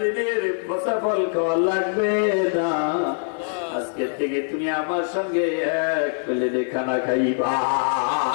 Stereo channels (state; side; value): silent; right; 55 dB below the other